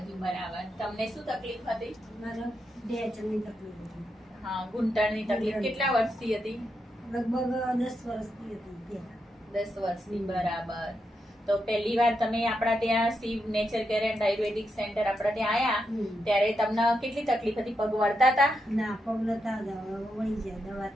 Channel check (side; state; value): both; normal; correlation 0.84